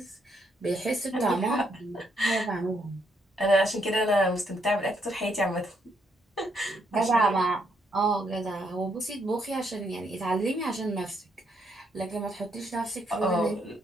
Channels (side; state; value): both; normal; correlation 0.75